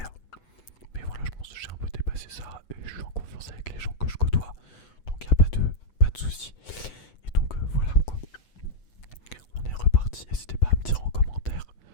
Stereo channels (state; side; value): late; right; 8.0 ms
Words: Mais voilà, je pense que j'ai un peu dépassé ça et je suis en confiance avec les gens que je côtoie. Donc, il n'y a pas de souci. Et donc, voilà quoi. On est reparti. N'hésitez pas à me dire en commentaire